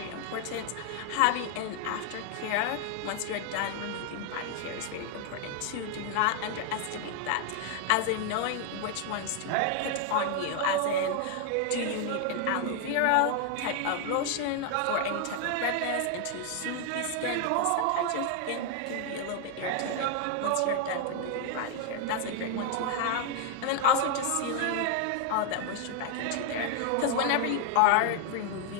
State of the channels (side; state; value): both; different; correlation 0.00